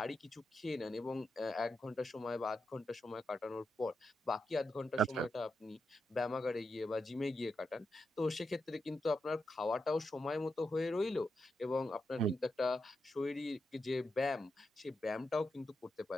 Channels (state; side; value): normal; both; correlation 0.86